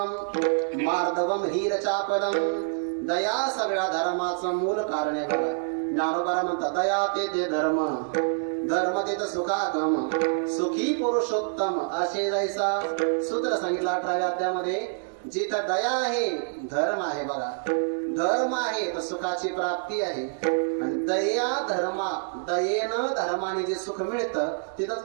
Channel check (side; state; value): left; silent; digital silence